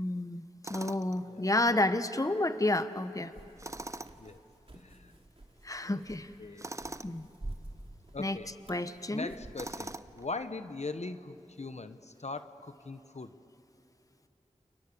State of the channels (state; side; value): normal; both; correlation 0.61